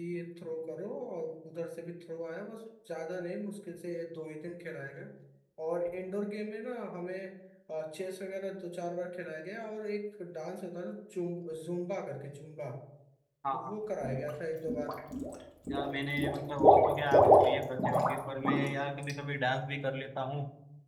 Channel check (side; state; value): both; identical; correlation 1.00